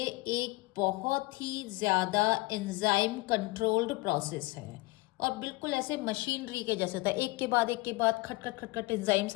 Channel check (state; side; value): quieter; right; 23.1 dB